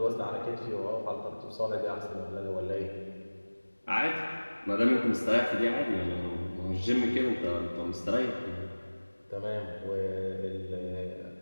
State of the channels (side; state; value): both; inverted; correlation -1.00